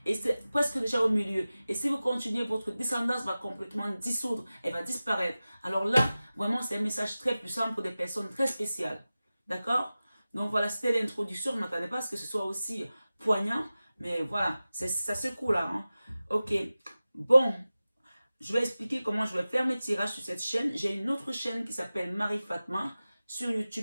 et c'est presque déjà au milieu. Et si vous continuez, votre descendance va complètement dissoudre, elle va disparaître. Alors là, vraiment, c'est un message très puissant pour des personnes très spéciales. D'accord? Donc voilà, c'était l'introduction. Je ne m'attendais pas à ce que ce soit aussi poignant. Mais voilà, ça secoue là. Hein. Ok. Bon, je vais expliquer comment je vais faire mes tirages sur cette chaîne. J'ai une autre chaîne qui s'appelle Marie Fatma. Sur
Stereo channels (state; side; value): inverted; both; correlation -0.96